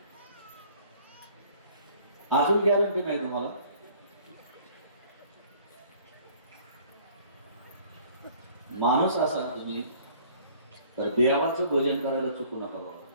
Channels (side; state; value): both; inverted; correlation -0.54